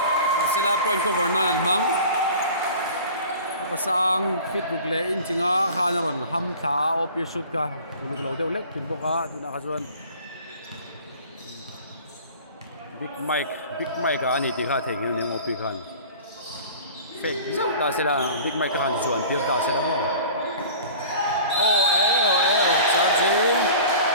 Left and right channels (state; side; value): inverted; both; correlation -0.43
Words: sila point cover na nan mang pasang fit buk le in chinga khana ron ham tha op ye shoot ka uluk lo deuh lek tin boka tuna kha chuan big mic ani ti kha theng ni op khan fake zau ta sila big mic khan chuan tir ta sila mo charging